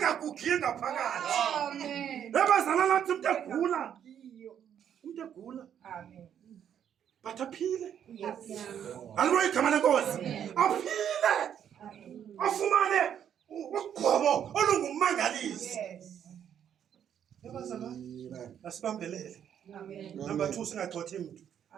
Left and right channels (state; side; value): quieter; left; 9.2 dB